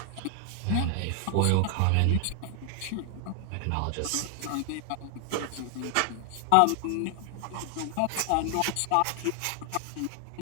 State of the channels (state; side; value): different; both; correlation 0.00